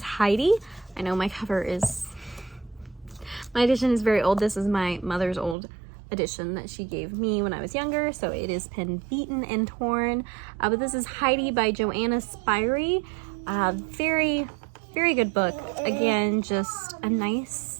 Heidi. I know my edition is very old. This is my mother's old edition that she gave me when I was younger, so it is pen beaten and torn. But this is Heidi by Joanna Spyri. Very, very good book. Again, just a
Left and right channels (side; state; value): left; drops out; at 5.6 s